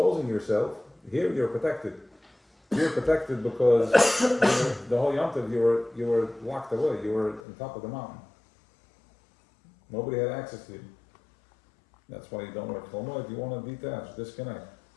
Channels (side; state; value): right; drops out; at 7.4 s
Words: yourself, here you're protected. You're protected because the whole Yom Tov you were locked away, you were on top of the mountain. Nobody had access to you. That's why you don't wear chol. If you want to detach, disconnect.